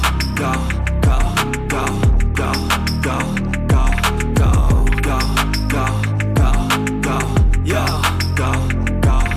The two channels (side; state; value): both; identical; correlation 1.00